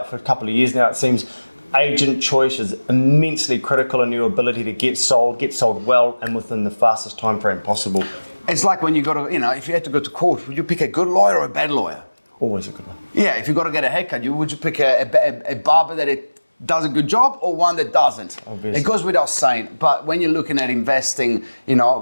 for a couple of years now, it seems agent choice is immensely critical in your ability to get sold well and within the fastest time frame possible. It's like when you go to, if you had to go to court, would you pick a good lawyer or a bad lawyer? Always a good one. Yeah, if you got to get a haircut, would you pick a barber that does a good job or one that doesn't? Obviously. It goes without saying. But when you're looking at investing,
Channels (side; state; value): both; inverted; correlation -1.00